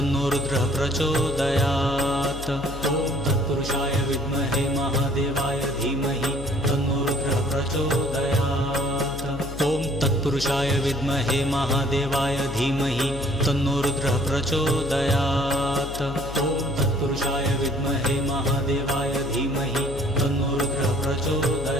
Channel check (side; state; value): left; noise; hum, 10 dB below the sound